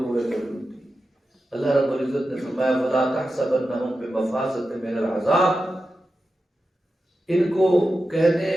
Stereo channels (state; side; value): normal; both; correlation 0.91